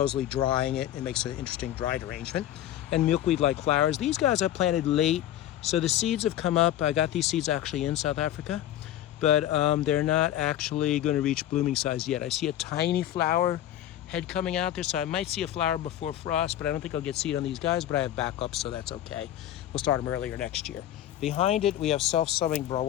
drying it makes an interesting dried arrangement. And milkweed-like flowers. These guys I planted late, so the seeds have come up. I got these seeds actually in South Africa, but they're not actually going to reach blooming size yet. I see a tiny flower head coming out there, so I might see a flower before frost, but I don't think I'll get seed on these guys, but I have backups, so that's okay. We'll start them earlier next year. Behind it, we have self-sowing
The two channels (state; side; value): quieter; right; 12.2 dB